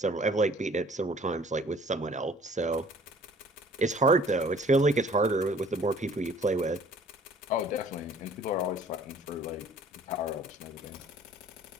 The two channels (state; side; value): normal; both; correlation 0.53